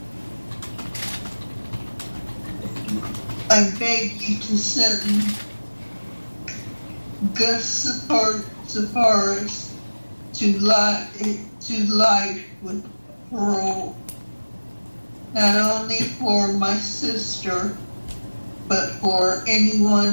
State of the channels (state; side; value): inverted; both; correlation -1.00